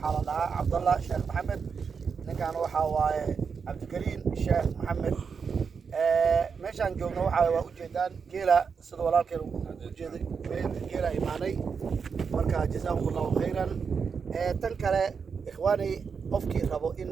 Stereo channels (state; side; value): quieter; left; 5.9 dB